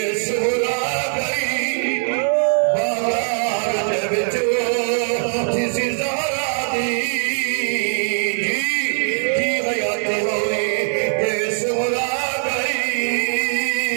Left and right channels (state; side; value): silent; left; 65 dB below the other